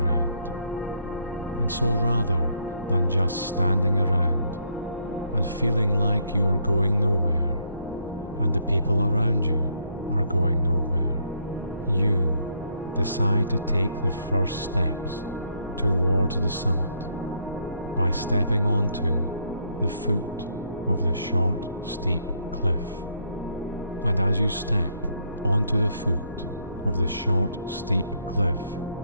And so rather than just standing around and feeling like you are going nowhere and the people around you are going nowhere, you decide to take the first steps towards the summit by stepping onto the foot of the short, steep cliff. And as you step onto the foot of the short, steep cliff,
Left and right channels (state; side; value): inverted; both; correlation -0.72